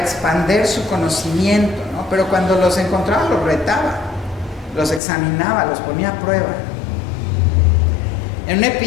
su conocimiento, ¿no? Pero cuando los encontraba, los retaba, los examinaba, los ponía a prueba. En un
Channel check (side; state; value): right; drops out; at 5.0 s